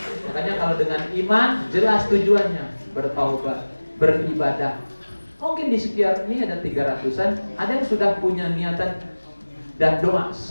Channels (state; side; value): inverted; both; correlation -1.00